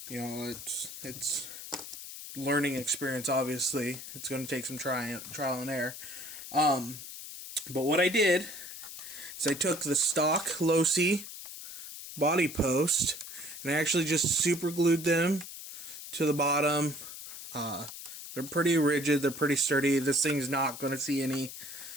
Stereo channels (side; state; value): left; noise; hiss, 11 dB below the sound